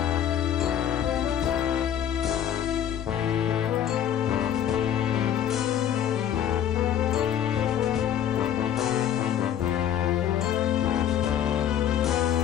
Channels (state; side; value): quieter; right; 9.9 dB